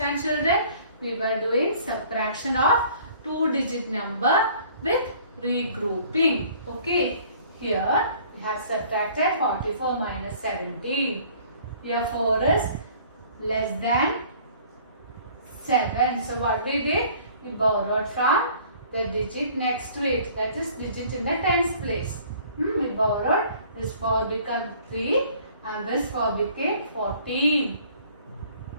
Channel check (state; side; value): inverted; both; correlation -0.53